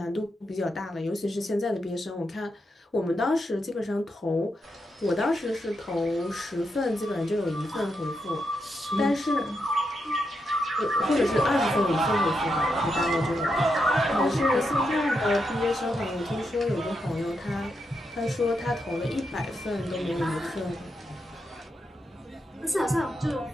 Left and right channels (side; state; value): both; normal; correlation 0.83